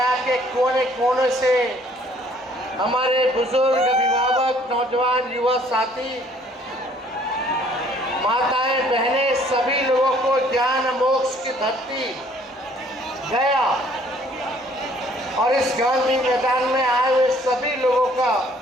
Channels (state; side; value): normal; both; correlation 0.60